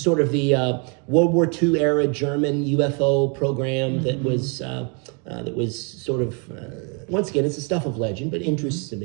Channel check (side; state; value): left; quieter; 35.9 dB